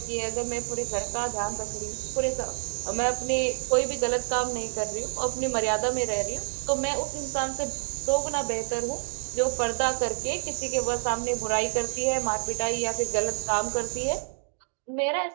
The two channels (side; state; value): left; silent; 59 dB below the other